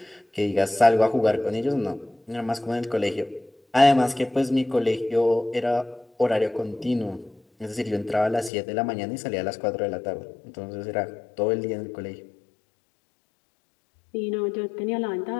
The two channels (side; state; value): right; drops out; at 8.5 s